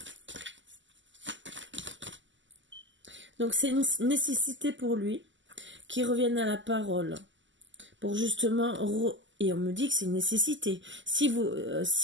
Donc c'est une nécessité pour lui qu'il revienne à la parole. Pour justement... Et on me dit que c'est une nécessité. S'il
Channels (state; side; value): late; left; 0.54 ms